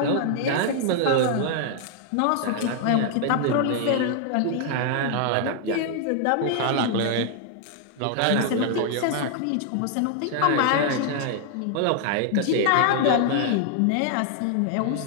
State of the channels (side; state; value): both; different; correlation 0.00